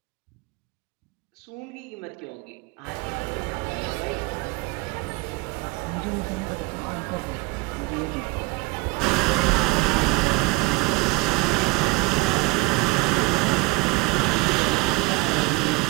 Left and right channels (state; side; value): quieter; left; 24.6 dB